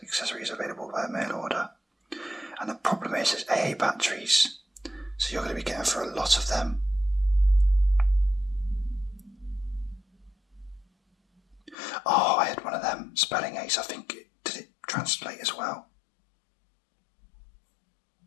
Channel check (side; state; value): right; drops out; at 11.8 s